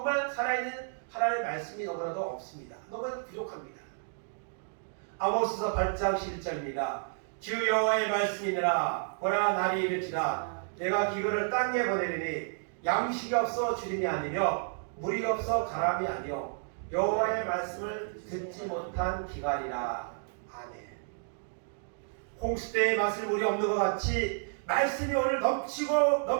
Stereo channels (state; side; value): silent; left; digital silence